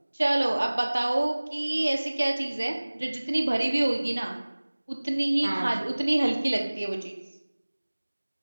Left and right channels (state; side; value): inverted; both; correlation -1.00